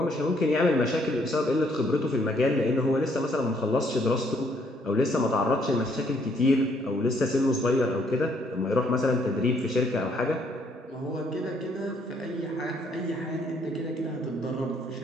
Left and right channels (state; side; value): normal; both; correlation 0.68